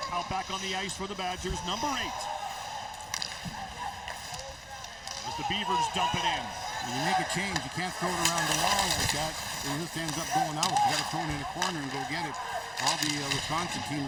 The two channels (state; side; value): identical; both; correlation 1.00